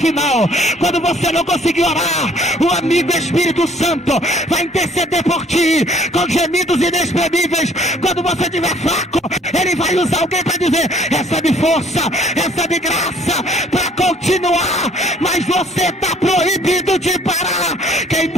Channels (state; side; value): normal; both; correlation 0.58